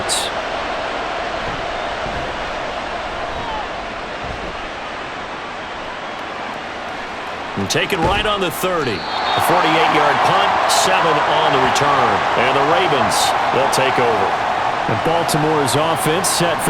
And taken right on the 30. A 48-yard punt, 7 on the return. And the Ravens, they'll take over. And Baltimore's offense set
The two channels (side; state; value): both; identical; correlation 1.00